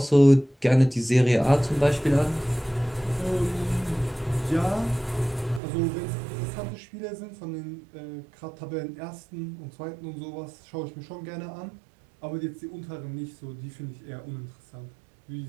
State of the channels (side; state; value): left; drops out; at 5.6 s